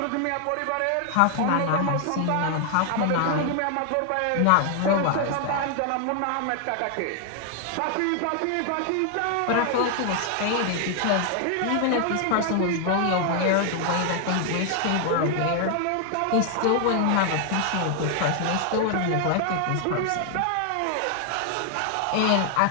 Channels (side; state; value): both; different; correlation 0.00